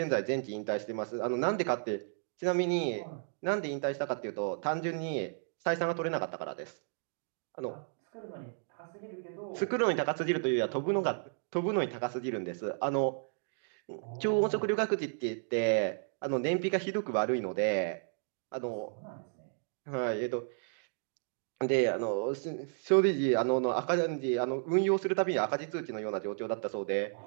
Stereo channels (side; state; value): left; silent; digital silence